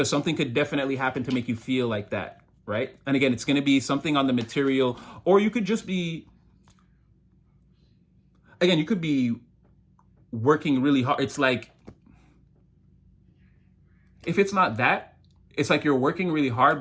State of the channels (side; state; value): both; identical; correlation 1.00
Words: something could definitely happen to make you feel like that, right? And again, it's going to be something on the material, or you could just be, again, you could be working really hard. It's like, if it's not that, it's like you're working really hard,